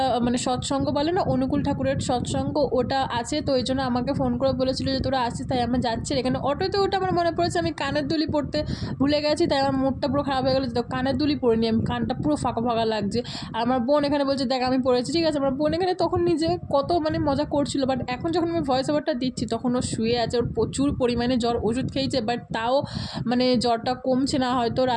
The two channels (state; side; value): identical; both; correlation 1.00